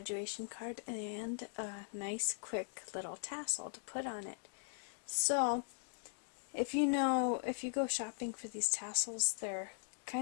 card and a nice quick little tassel to put on it. So, if you go shopping for these tassels, they're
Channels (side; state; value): right; silent; digital silence